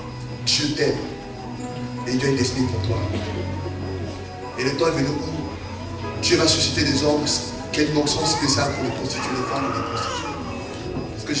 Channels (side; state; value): both; identical; correlation 1.00